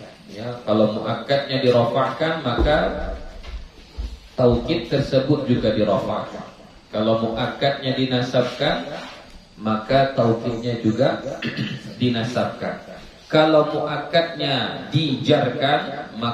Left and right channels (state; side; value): identical; both; correlation 1.00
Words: Ya, kalau muakkadnya dirafa'kan maka taukid tersebut juga dirafa'kan. Kalau muakkadnya dinasabkan maka taukidnya juga dinasabkan. Kalau muakkadnya dijarkan